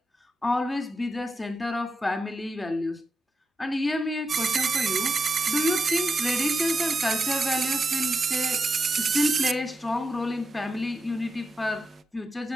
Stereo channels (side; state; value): both; normal; correlation 0.86